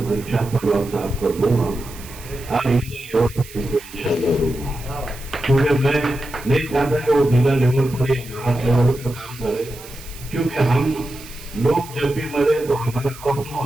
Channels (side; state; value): right; noise; hiss, 17 dB below the sound